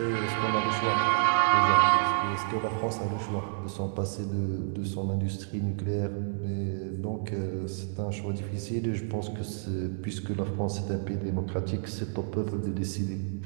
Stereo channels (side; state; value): left; silent; digital silence